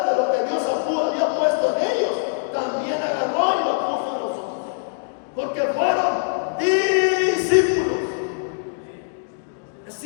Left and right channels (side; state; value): right; silent; digital silence